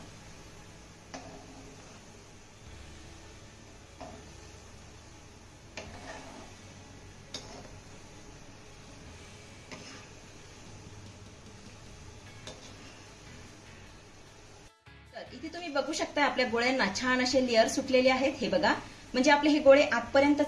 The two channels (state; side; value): identical; both; correlation 1.00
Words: तर इथे तुम्ही बघू शकता आपल्या गोळ्यांना छान असे लेअर सुटलेले आहेत. हे बघा. म्हणजे आपले हे गोळे आतपर्यंत